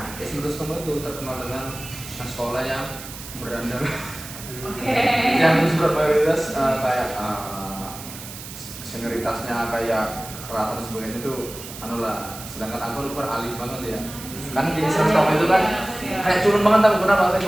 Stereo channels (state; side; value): noise; right; hiss, 13 dB below the sound